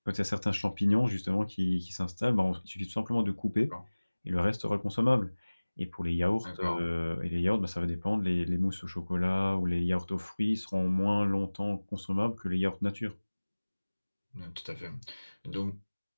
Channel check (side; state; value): both; inverted; correlation -1.00